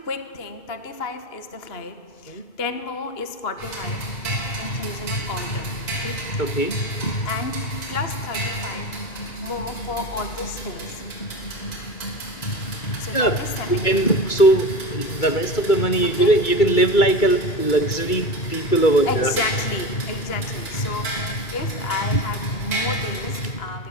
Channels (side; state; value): right; late; 2.2 ms